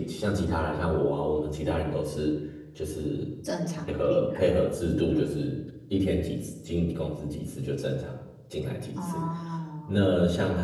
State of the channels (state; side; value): identical; both; correlation 1.00